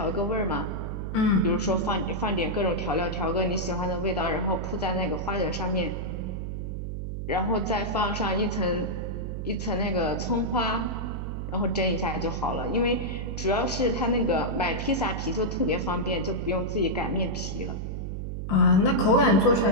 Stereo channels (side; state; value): right; noise; hum, 5 dB below the sound